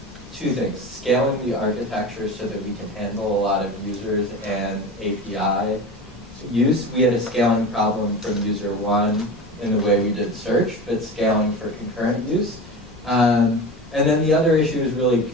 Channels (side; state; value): both; normal; correlation 0.30